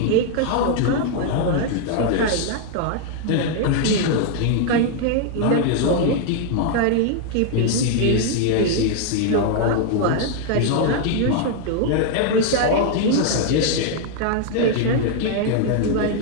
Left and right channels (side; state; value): both; different; correlation 0.00